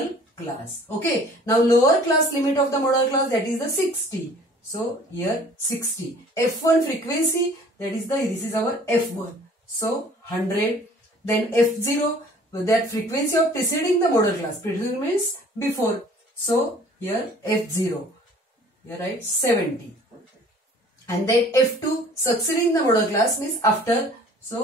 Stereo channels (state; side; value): normal; both; correlation 0.51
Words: class. Okay. Now lower class limit of the model class, that is the 60. So here 60. F1 frequency, this is our F1. So 100. Then F0, that frequency of preceding the model class. Preceding means before. So here F0. Here write 70. And then F2 succeeding the model class means after.